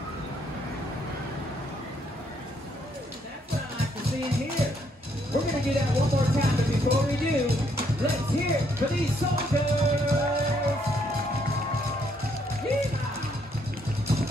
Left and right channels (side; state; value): both; normal; correlation 0.71